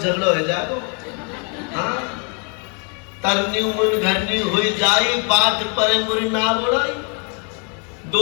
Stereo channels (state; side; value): quieter; right; 37.4 dB